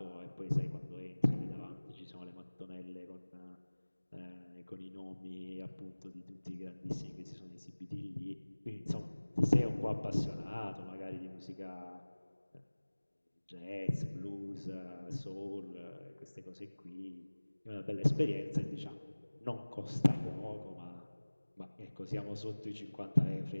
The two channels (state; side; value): inverted; both; correlation -1.00